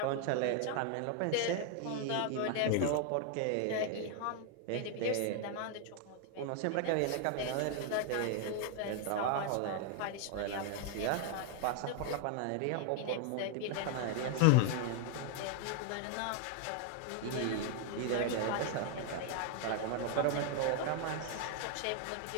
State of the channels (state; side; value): different; both; correlation 0.00